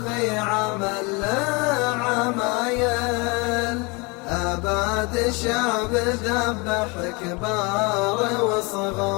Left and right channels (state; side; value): quieter; right; 28.3 dB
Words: عمل له عمايل، أباد شعب ذبح كبار